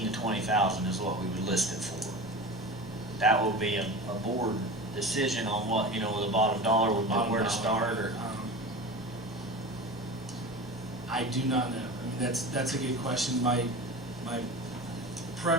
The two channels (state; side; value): normal; both; correlation 0.32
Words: to 20,000 is what we would list it for. That will be a board decision on what, the bottom dollar would be, where to start, or. I do not know. I mean, that's a good question. My